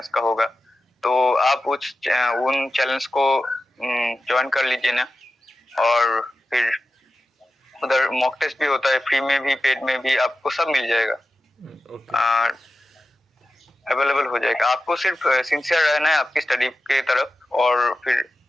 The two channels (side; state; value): both; normal; correlation 0.92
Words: का होगा, तो आप उन चैनल्स को ज्वाइन कर लीजिए ना। और फिर उधर मॉक टेस्ट भी होता है, फ्री में भी पेड में भी, आपको सब मिल जाएगा, अवेलेबल हो जाएगा। आपको सिर्फ सिंसियर रहना है आपकी स्टडी के तरफ, और फिर